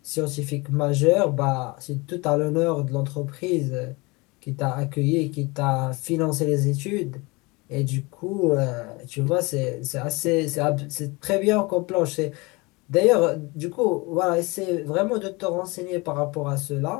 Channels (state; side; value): quieter; right; 25.5 dB